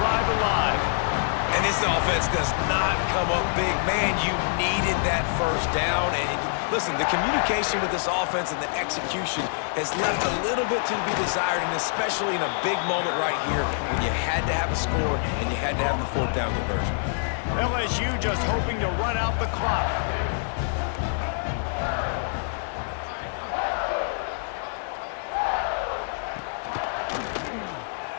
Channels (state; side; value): silent; right; digital silence